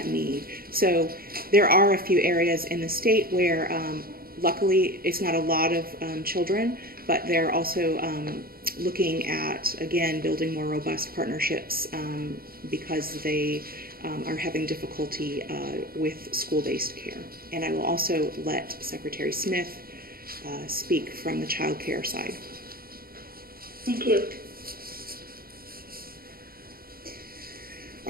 need. So there are a few areas in the state where luckily it's not a lot of children, but they're also looking at, again, building more robust partnerships because they are having difficulty with school-based care. And I will also let Secretary Smith speak from the child care side. Thank you.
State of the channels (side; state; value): left; late; 0.43 ms